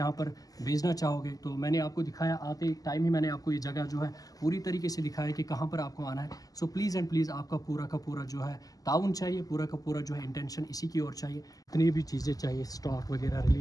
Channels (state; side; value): late; right; 0.17 ms